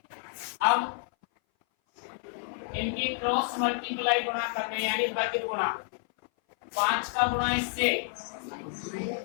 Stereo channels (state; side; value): silent; right; 58 dB below the other